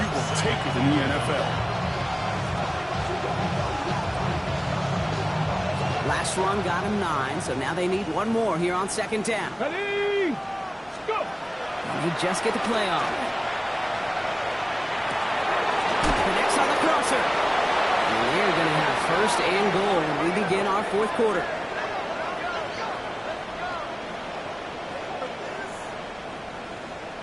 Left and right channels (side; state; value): both; identical; correlation 1.00